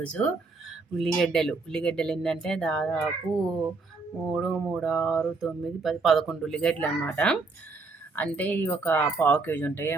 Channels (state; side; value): quieter; left; 3.9 dB